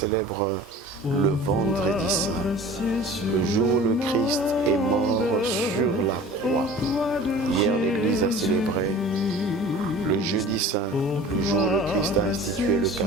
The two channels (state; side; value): normal; both; correlation 0.42